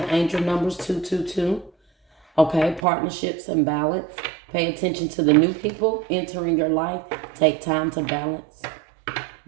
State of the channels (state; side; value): drops out; left; at 2.8 s